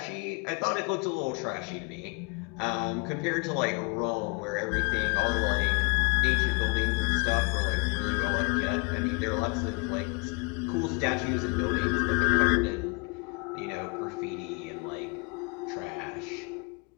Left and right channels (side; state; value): right; quieter; 31.7 dB